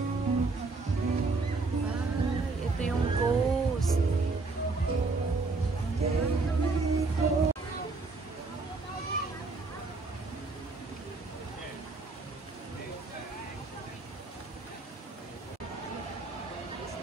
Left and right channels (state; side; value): quieter; left; 3.8 dB